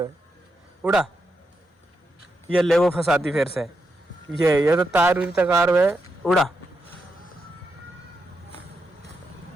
उड़ा, ये ले वो फंसाती फिर से। ये तो तार उरी तकार है। उड़ा,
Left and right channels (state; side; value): normal; both; correlation 0.84